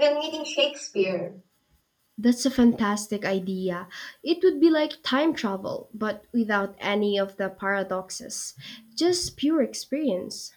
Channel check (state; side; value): identical; both; correlation 1.00